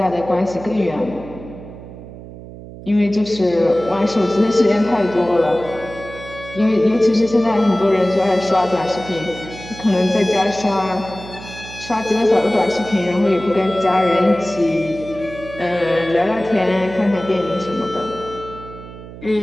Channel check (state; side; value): noise; right; hum, 15 dB below the sound